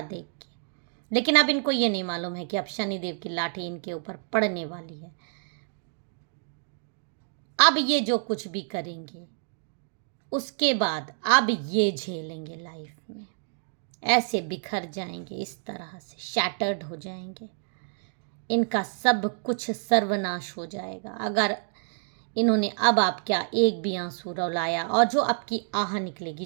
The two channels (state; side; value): silent; left; digital silence